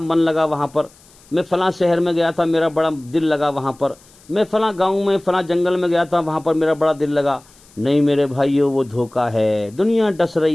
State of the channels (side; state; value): left; noise; hiss, 27 dB below the sound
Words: लगा वहाँ पर, मैं फलां शहर में गया था, मेरा बड़ा दिल लगा वहाँ पर, मैं फलां गांव में फलां जंगल में गया था, वहाँ पर मेरा बड़ा दिल लगा। नहीं मेरे भाइयों, वो धोखा है। दुनिया डस